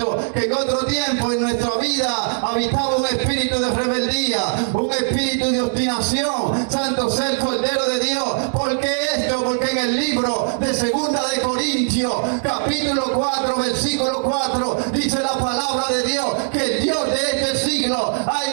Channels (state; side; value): silent; left; 64 dB below the other